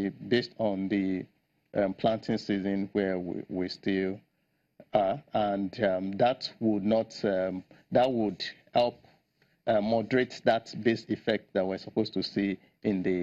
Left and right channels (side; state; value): both; identical; correlation 1.00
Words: on the planting season where we still are, and that would help moderate that base effect that we're supposed to see in